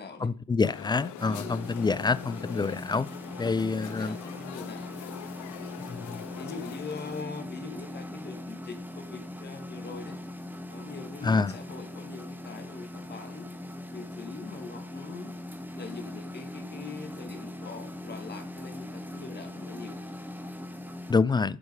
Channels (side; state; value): right; quieter; 3.7 dB